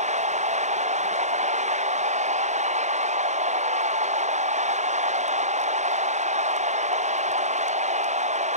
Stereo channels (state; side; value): late; left; 0.34 ms